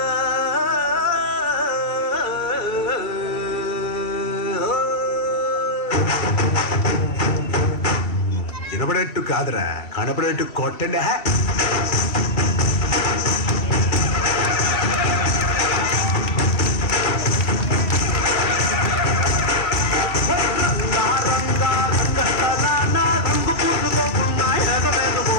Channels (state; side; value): late; right; 2.7 ms